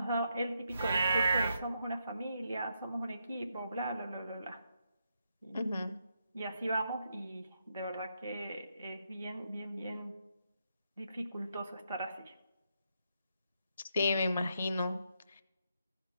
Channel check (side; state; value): both; inverted; correlation -0.80